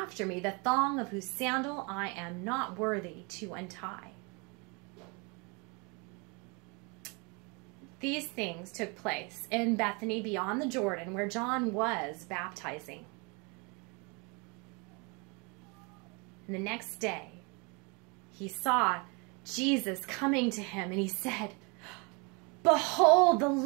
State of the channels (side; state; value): left; quieter; 31.1 dB